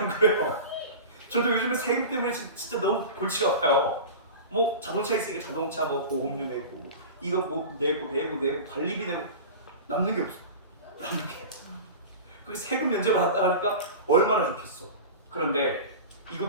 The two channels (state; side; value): inverted; both; correlation -0.31